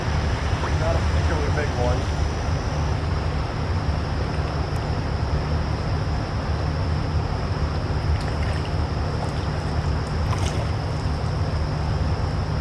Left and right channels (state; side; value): identical; both; correlation 1.00